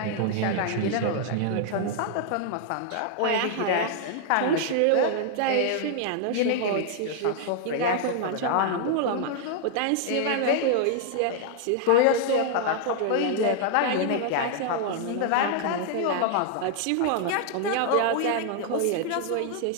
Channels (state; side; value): different; both; correlation 0.00